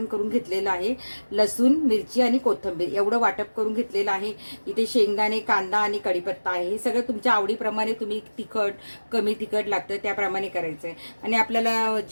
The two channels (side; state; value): both; inverted; correlation -1.00